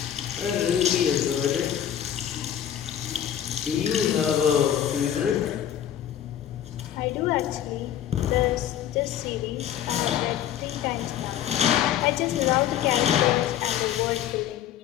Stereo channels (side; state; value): right; quieter; 10.4 dB